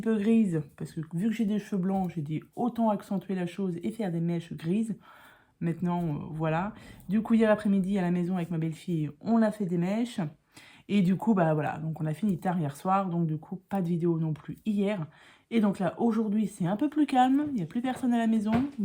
peu grise, parce que vu que j'ai des cheveux blancs, j'ai dit autant accentuer la chose et faire des mèches grises. Maintenant, voilà. Du coup, hier après-midi, à la maison avec ma belle-fille, on a fait des mèches. Et du coup, bah voilà, donc on a fini tard hier soir, donc du coup, pas de vidéo non plus hier. Et donc là, aujourd'hui, c'est un peu plus calme, il n'y a plus personne à la maison.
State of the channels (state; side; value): identical; both; correlation 1.00